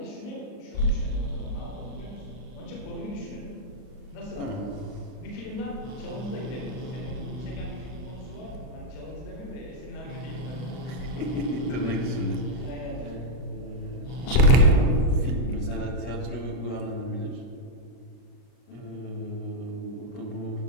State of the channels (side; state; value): right; late; 39 ms